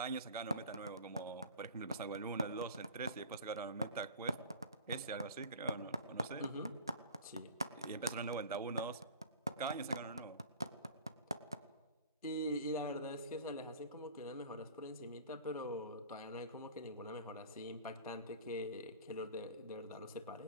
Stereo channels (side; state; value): both; inverted; correlation -0.40